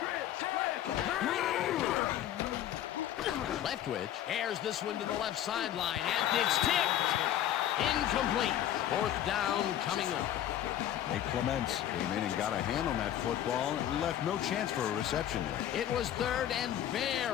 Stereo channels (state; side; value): quieter; right; 11.6 dB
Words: Leftwich airs this one to the left sideline, and it's tipped. Incomplete. 4th down coming up. Nate Clements came in and got a hand on that football and left no chance for a reception there. It was 3rd and